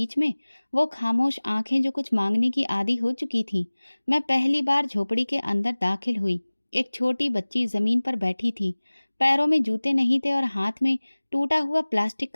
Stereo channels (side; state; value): both; inverted; correlation -1.00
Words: में वो खामोश आंखें जो कुछ मांगने की आदी हो चुकी थीं। मैं पहली बार झोपड़ी के अंदर दाखिल हुई। एक छोटी बच्ची जमीन पर बैठी थी। पैरों में जूते नहीं थे और हाथ में टूटा हुआ प्लास्टिक